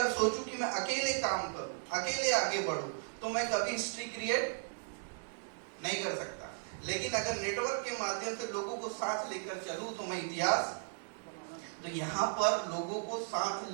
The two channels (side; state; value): left; silent; digital silence